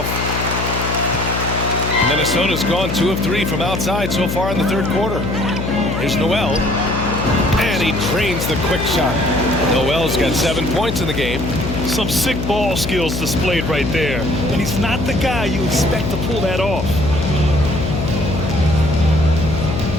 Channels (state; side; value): noise; left; hum, 3 dB below the sound